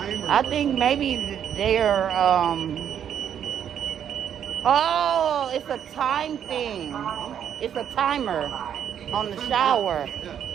I think maybe they're, oh, it's a time thing. It's a timer on the shower. Yeah.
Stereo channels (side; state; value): left; quieter; 9.1 dB